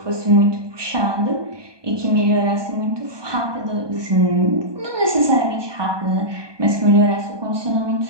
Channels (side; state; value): left; late; 1.2 ms